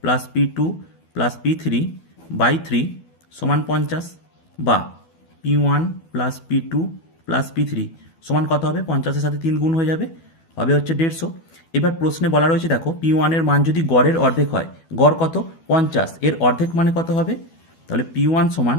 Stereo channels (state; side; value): late; right; 12 ms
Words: plus P2 plus P3 by 3 সমান 50, বা P1 plus P2 plus P3 সমান কত হবে? 50-এর সাথে 3 গুণ হয়ে যাবে, হবে হচ্ছে 150। এবার প্রশ্নে বলা রয়েছে দেখো P1 এর মান যদি গড়ের অর্ধেক হয়, গড় কত? 50, এর অর্ধেক মানে কত হবে? তাহলে P1 সমান